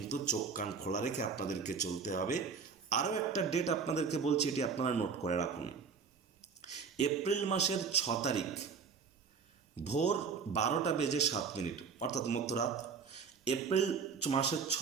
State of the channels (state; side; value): quieter; left; 5.7 dB